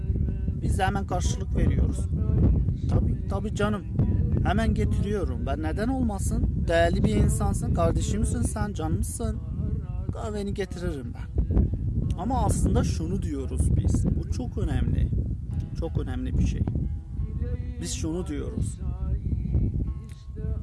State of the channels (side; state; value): both; identical; correlation 1.00